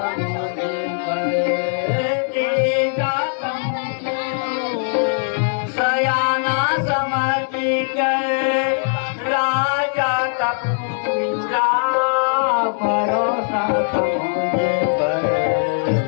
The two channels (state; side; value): silent; right; digital silence